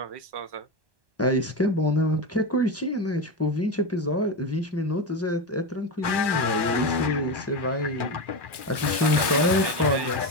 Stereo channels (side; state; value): left; late; 1.2 ms